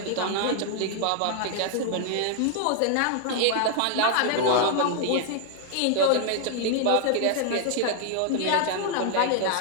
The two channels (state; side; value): different; both; correlation 0.00